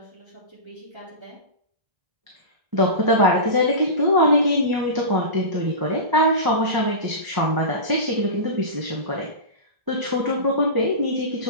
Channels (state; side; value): late; left; 1.6 ms